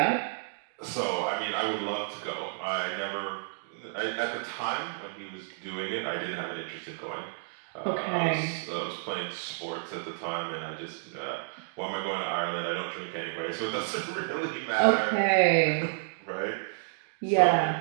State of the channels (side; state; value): left; silent; digital silence